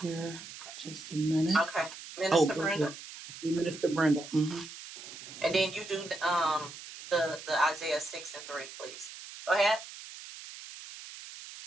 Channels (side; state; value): right; noise; hiss, 13 dB below the sound